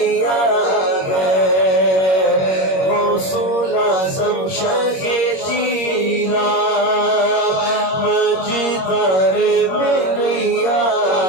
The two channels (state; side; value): late; right; 21 ms